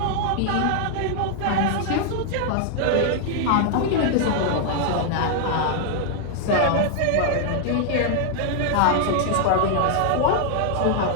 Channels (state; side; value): different; both; correlation 0.00